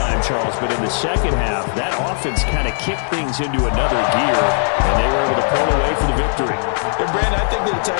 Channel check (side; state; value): right; silent; digital silence